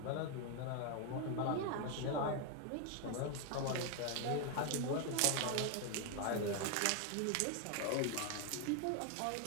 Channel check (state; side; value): different; both; correlation 0.01